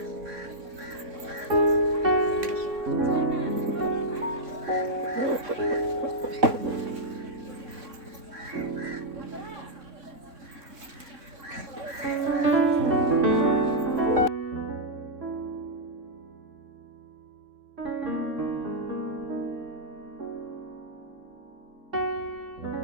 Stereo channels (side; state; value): left; late; 3.6 ms